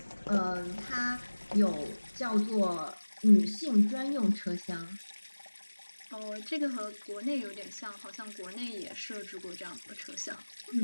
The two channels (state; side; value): inverted; both; correlation -1.00